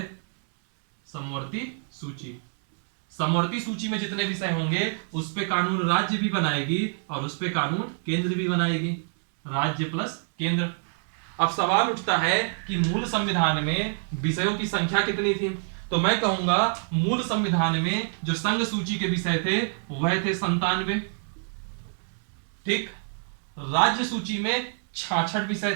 समवर्ती सूची, समवर्ती सूची में जितने विषय होंगे उस पे कानून राज्य भी बनाएगी और उस पे कानून केंद्र भी बनाएगी, राज्य प्लस केंद्र। अब सवाल उठता है कि मूल संविधान में विषयों की संख्या कितनी थी, तो मैं कहूंगा मूल संविधान में जो संघ सूची के विषय थे वह थे 97। ठीक, राज्य सूची में 66 विषय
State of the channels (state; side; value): silent; left; 61 dB below the other